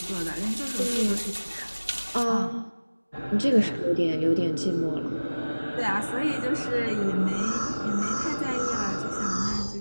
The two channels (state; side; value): inverted; both; correlation -1.00